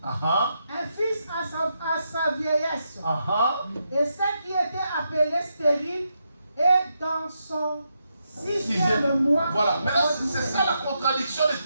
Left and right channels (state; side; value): inverted; both; correlation -0.83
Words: Uh-huh. Un fils à sa vieillesse. Uh-huh. Et celle qui était appelée stérile est dans son sixième mois. Voilà. Maintenant, c'est ça la contradiction de